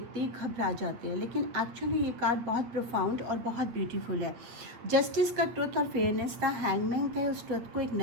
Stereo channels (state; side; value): late; left; 8.6 ms